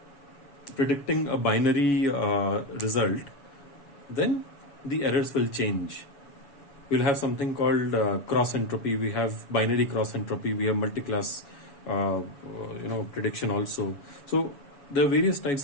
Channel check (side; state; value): right; late; 7.1 ms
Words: predicting a binary result, then the errors will change. We'll have something called cross entropy. We have binary cross entropy. We have multi-class prediction also. So there are various types